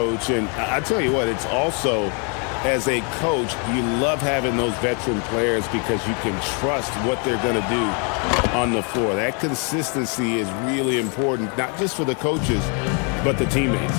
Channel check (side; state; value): right; quieter; 37.0 dB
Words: And I tell you what, it's also, as a coach, you love having those veteran players because you can trust what they're going to do on the floor. That consistency is really important, not just for the coaches, but the teammates.